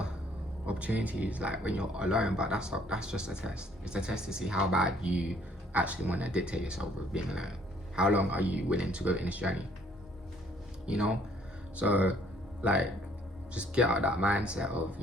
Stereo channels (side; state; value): both; normal; correlation 0.62